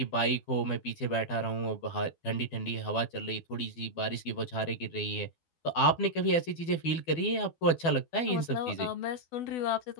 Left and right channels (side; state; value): right; late; 12 ms